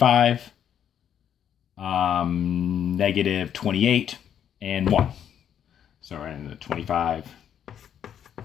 Negative 28, and 1. So we're in the 25,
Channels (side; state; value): right; quieter; 9.2 dB